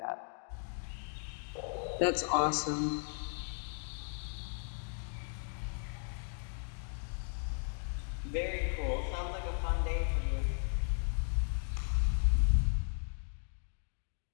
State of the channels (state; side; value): silent; right; 54 dB below the other